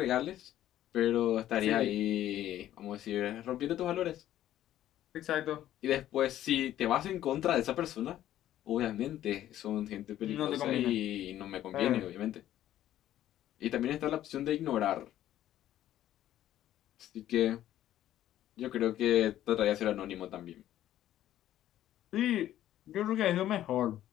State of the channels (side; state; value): right; quieter; 12.6 dB